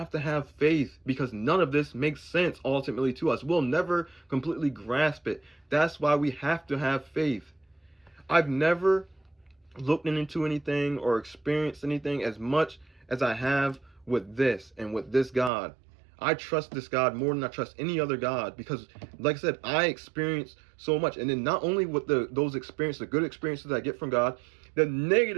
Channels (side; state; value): left; drops out; at 15.5 s